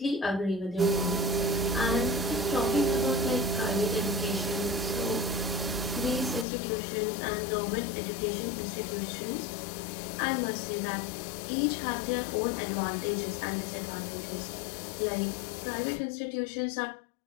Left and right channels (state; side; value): drops out; right; at 6.5 s